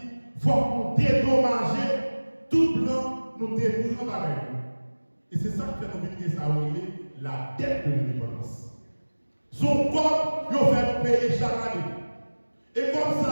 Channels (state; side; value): inverted; both; correlation -1.00